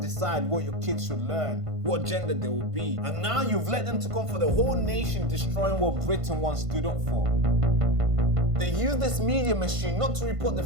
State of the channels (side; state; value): left; late; 1.5 ms